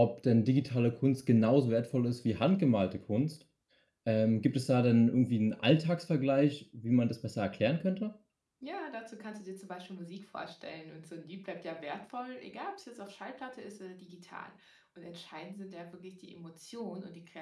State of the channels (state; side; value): identical; both; correlation 1.00